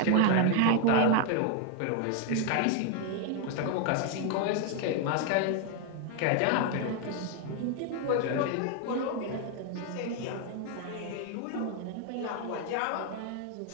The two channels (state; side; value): different; both; correlation 0.01